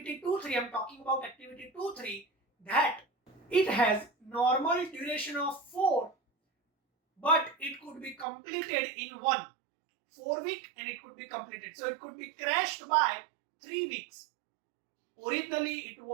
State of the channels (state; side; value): drops out; left; at 8.2 s